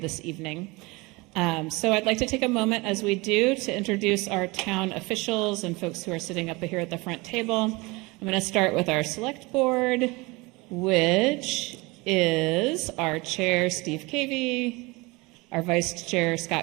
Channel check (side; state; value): left; quieter; 24.5 dB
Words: evening. So I'd like to take a moment, as we do, to introduce our town officials and folks who are sitting up here at the front table. I'm going to start with our select board, which is our chair, Steve Cavey, our vice chair,